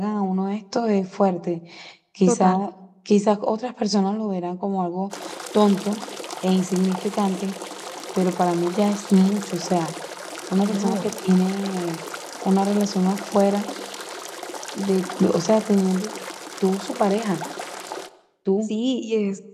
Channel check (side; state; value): both; identical; correlation 1.00